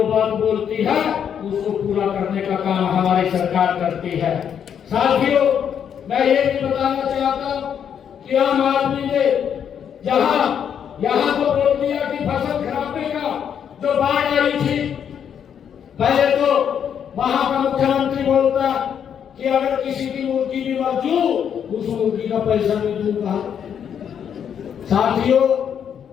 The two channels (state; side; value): quieter; right; 8.3 dB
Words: बात बोलती है उसको पूरा करने का काम हमारी सरकार करती है। साथियों, मैं ये भी बताना चाहता हूँ कि आम आदमी ने यहाँ तो बोल दिया कि फसल खराबे का जो बाढ़ आई थी, पहले तो वहां का मुख्यमंत्री बोलता कि अगर किसी की मुर्गी भी मर जू उस मुर्गी का पैसा नहीं दूंगा। साथियों,